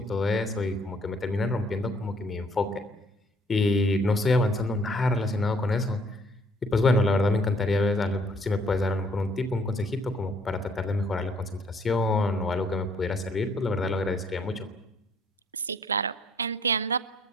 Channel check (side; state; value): both; normal; correlation 0.63